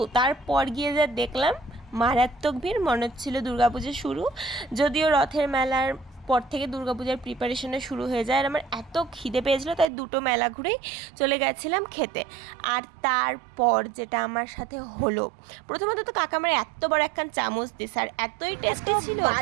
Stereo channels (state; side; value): drops out; left; at 9.9 s